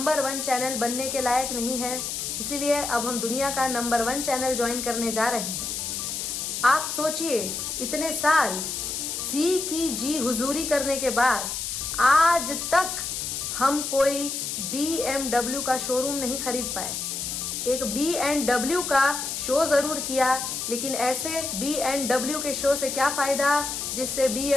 1 चैनल बनने के लायक नहीं है। इसीलिए अब हम दुनिया का नंबर 1 चैनल ज्वाइन करने जा रहे हैं। आप सोचिए, इतने साल सी की जी हुजूरी करने के बाद आज तक हम कोई BMW का शोरूम नहीं खरीद पाए। एक BMW का शो ज़रूर किया, लेकिन ऐसे BMW के शो से क्या फ़ायदा जिससे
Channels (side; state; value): left; noise; hiss, 4 dB below the sound